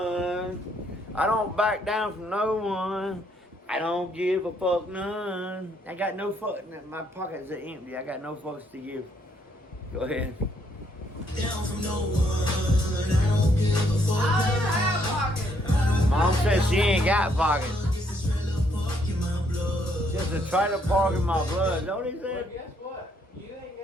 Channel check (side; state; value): both; normal; correlation 0.71